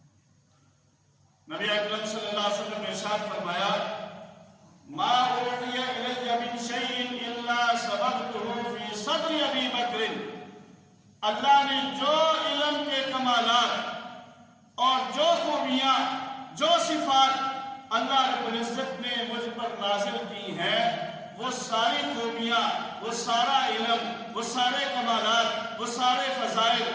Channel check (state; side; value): identical; both; correlation 1.00